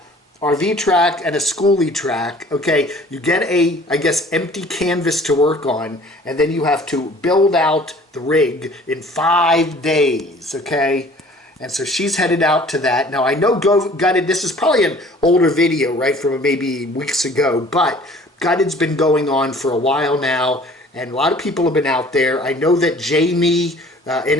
RV track, and a schoolie track. Okay, you get a, I guess, empty canvas to work on, and then you have to build out the rig in 5 days, okay? And so she's headed out to that. Now, I know Gutted, this is probably an older video, right, from maybe weeks ago, but Gutted's been going on for a while now, and a lot of people have been out there. I know that Jamie,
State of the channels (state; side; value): normal; both; correlation 0.51